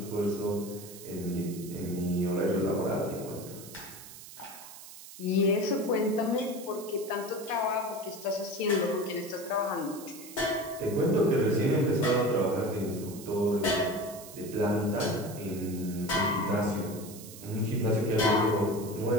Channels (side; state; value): right; noise; hiss, 15 dB below the sound